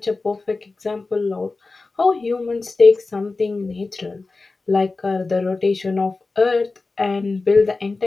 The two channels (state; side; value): quieter; right; 3.7 dB